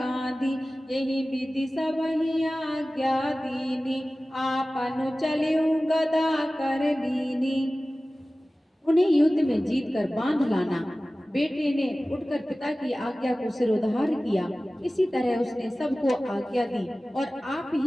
यही विधि सबहि आज्ञा दीनी आपनु चलिउ गदा कर लीनी। उन्हें युद्ध में जीत कर बांध लाना। बेटे ने उठकर पिता की आज्ञा को सिरोधार किया। इसी तरह उसने सबको आज्ञा दी और आप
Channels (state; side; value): normal; both; correlation 0.97